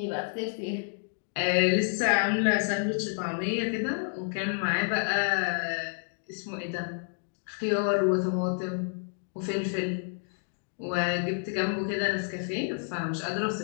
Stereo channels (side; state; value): right; silent; 58 dB below the other